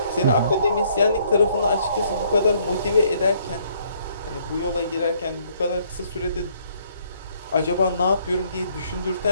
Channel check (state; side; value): inverted; both; correlation -0.66